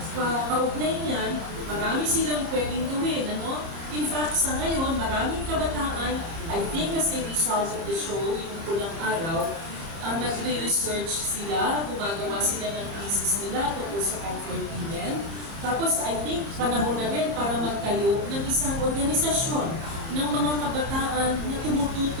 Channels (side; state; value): left; late; 30 ms